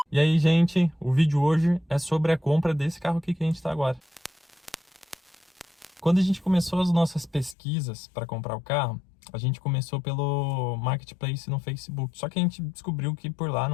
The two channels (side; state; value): right; drops out; at 7.6 s